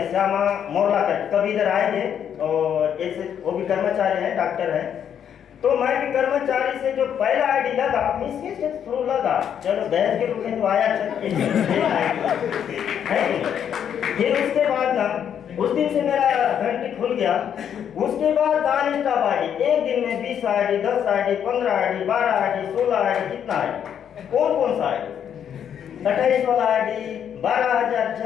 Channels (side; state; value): right; quieter; 8.8 dB